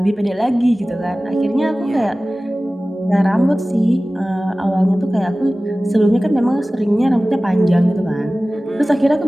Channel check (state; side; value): normal; both; correlation 0.97